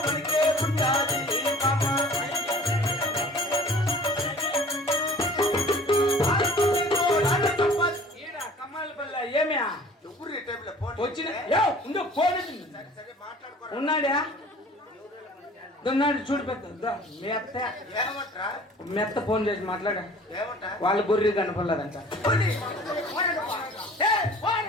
ఉన్నాడా? ఉన్నాడు చూడు. పెద్ద మెత్త ఫోన్ చేసి మాట్లాడా. వాళ్ళ గొర్రె కనపడలేదంట.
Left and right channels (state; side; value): normal; both; correlation 0.48